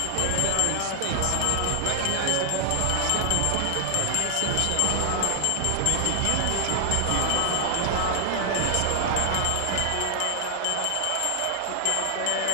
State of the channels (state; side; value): different; both; correlation 0.00